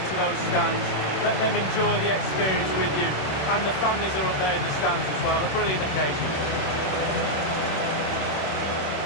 those stands. Let them enjoy the experience with you. And the families are up there in the stands as well. A brilliant occasion.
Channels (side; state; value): right; late; 26 ms